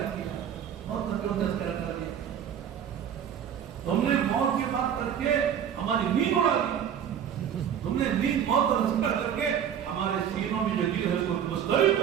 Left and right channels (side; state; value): left; quieter; 8.9 dB